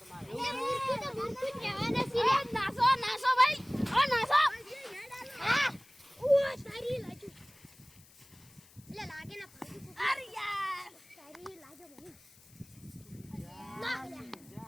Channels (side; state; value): left; noise; hiss, 25 dB below the sound